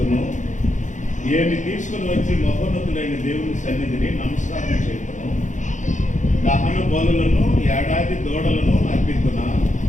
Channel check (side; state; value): right; late; 0.36 ms